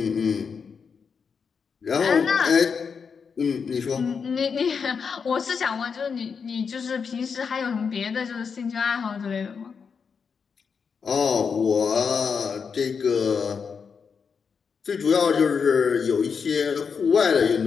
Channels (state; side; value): quieter; right; 6.0 dB